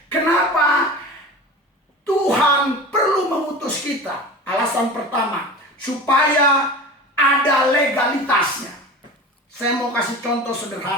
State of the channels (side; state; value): both; normal; correlation 0.34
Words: Kenapa? Tuhan perlu mengutus kita. Alasan pertama, supaya ada legalitasnya. Saya mau kasih contoh